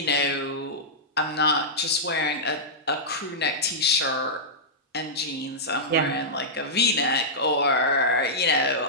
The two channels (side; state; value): both; normal; correlation -0.12